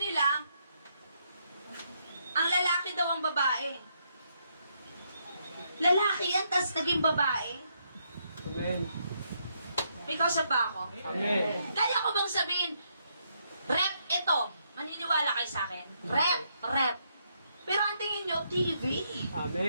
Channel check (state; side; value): inverted; both; correlation -0.76